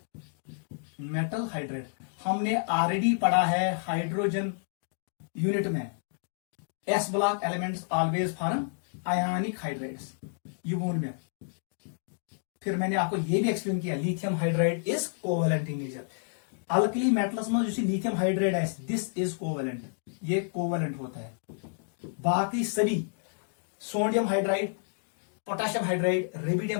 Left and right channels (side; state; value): right; silent; digital silence